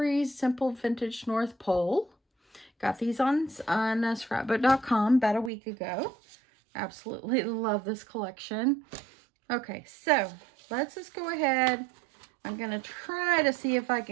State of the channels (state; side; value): drops out; left; at 5.5 s